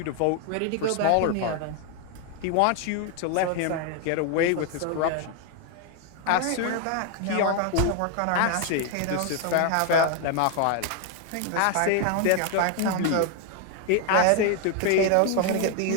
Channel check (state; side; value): different; both; correlation 0.01